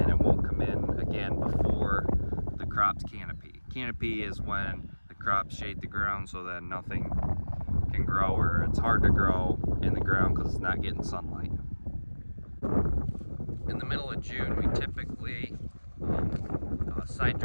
it won't come in again before the crop's canopy. Canopy is when the crops shade the ground so that nothing can grow, or it's hard to grow in the ground because it's not getting sunlight. In the middle of June, we typically side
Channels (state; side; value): inverted; both; correlation -1.00